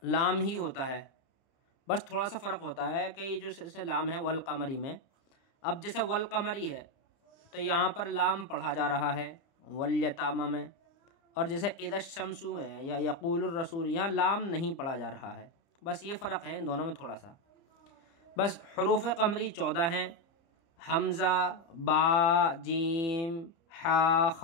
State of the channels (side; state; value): right; late; 30 ms